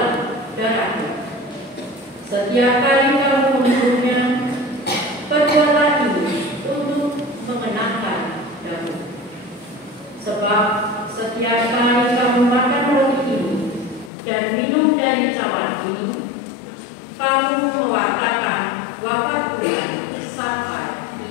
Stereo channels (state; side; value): drops out; right; at 14.1 s